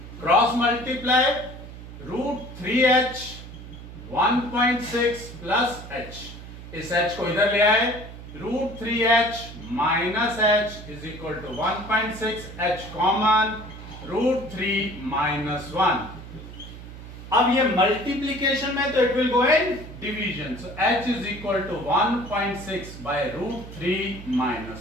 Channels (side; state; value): right; noise; hum, 14 dB below the sound